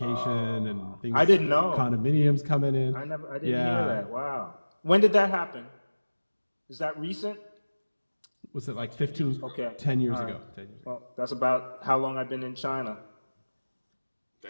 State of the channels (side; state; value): both; inverted; correlation -1.00